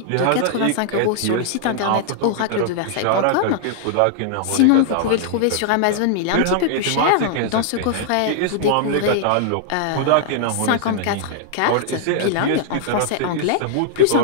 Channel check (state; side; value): different; both; correlation -0.01